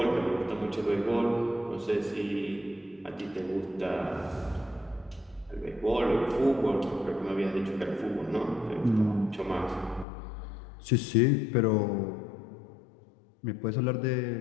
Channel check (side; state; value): right; drops out; at 10.1 s